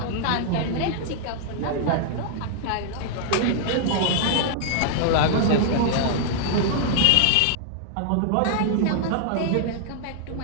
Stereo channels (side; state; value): both; different; correlation -0.01